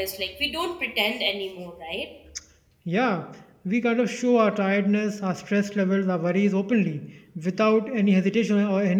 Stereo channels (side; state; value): both; identical; correlation 1.00